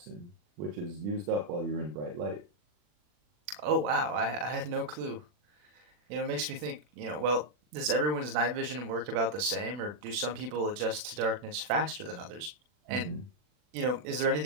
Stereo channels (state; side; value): late; left; 40 ms